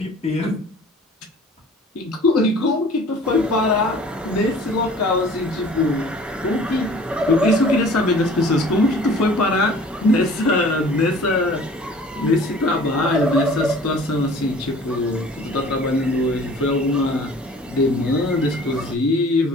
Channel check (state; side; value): normal; both; correlation 0.48